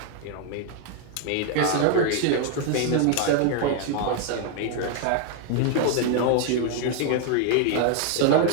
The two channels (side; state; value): both; different; correlation 0.00